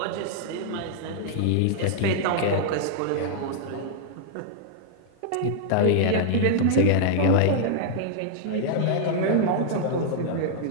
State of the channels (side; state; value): both; different; correlation -0.01